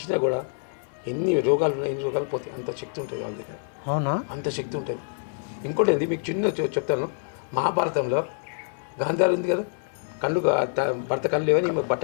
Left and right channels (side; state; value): right; silent; 60 dB below the other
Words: కూడా ఎన్ని రోగాలు ఉన్నాయి, ఎన్ని రోగాలు పోతాయి, అంత శక్తి ఉంటుంది వాళ్ళ దగ్గర. అవునా? అంత శక్తి ఉంటుంది. ఇంకోటి ఏంది మీకు చిన్న చెప్తాను, మహాభారతంలో గాంధారి ఉంది కదా, భర్త కళ్ళు లేవని ఈమె బట్ట